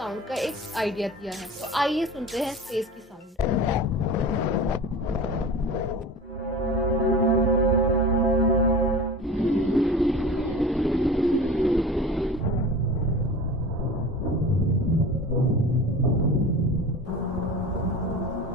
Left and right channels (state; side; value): normal; both; correlation 0.34